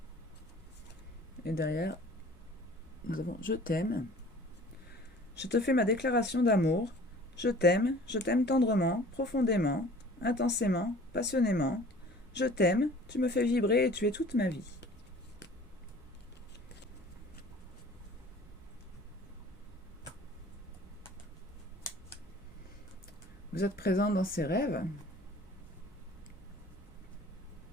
» Et derrière, nous avons « Je t'aime. Je te fais ma déclaration d'amour. Je t'aime tendrement, profondément, intensément, passionnément. Je t'aime, tu me fais vibrer et tu es toute ma vie. » Vous êtes présent dans ses rêves.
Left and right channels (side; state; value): both; normal; correlation 0.48